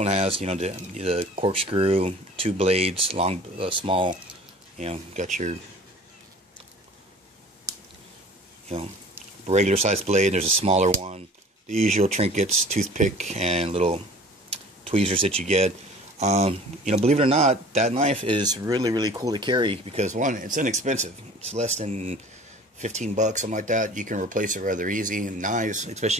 has the corkscrew, 2 blades, long, small. Got your regular sized blade. There's a smaller one. The usual trinkets, toothpick, and little tweezers that you get. Believe it or not, that knife is really cool to carry because, one, it's inexpensive. It's less than 15 bucks, something like that. You can replace it rather easy. And knives,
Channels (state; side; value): normal; both; correlation 0.45